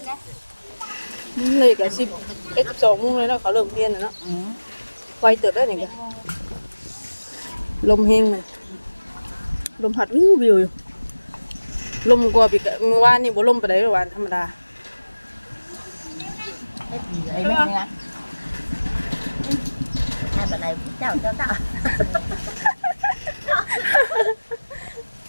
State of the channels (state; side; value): inverted; both; correlation -1.00